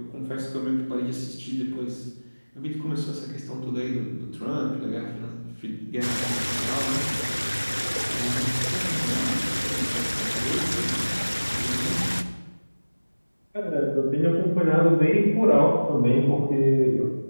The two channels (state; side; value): inverted; both; correlation -1.00